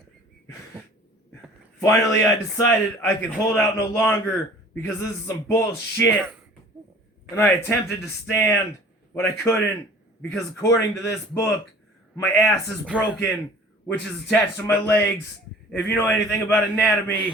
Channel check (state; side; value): normal; both; correlation 0.48